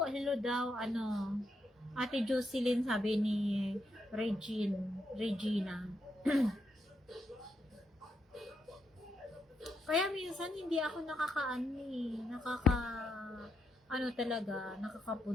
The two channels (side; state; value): both; normal; correlation 0.81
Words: Hello daw, Ate Jocelyn, sabi ni Regina. Kaya minsan hindi ako